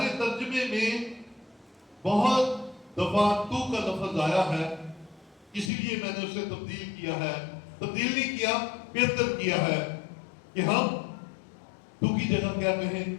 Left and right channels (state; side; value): drops out; right; at 5.7 s